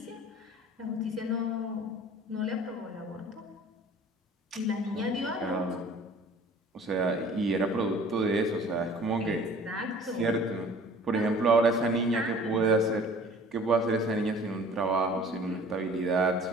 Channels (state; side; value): normal; both; correlation 0.48